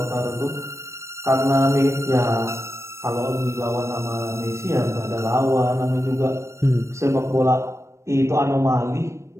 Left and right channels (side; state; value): left; late; 0.13 ms